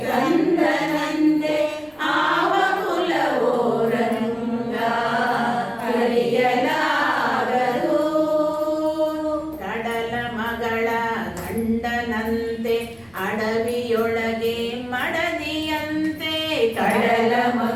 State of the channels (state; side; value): noise; right; rumble, 30 dB below the sound